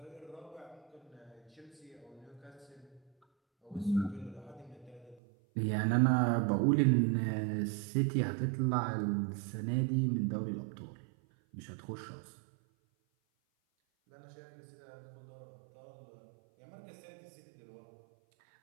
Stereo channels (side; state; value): left; drops out; at 5.2 s